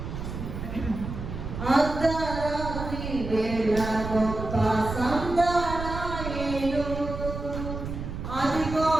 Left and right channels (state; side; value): noise; right; rumble, 7 dB below the sound